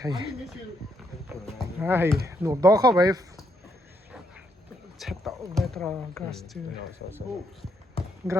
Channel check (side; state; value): both; normal; correlation 0.76